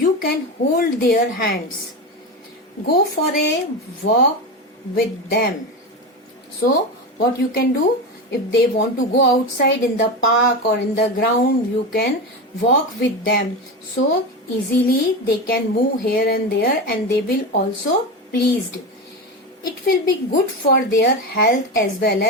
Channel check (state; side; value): normal; both; correlation 0.20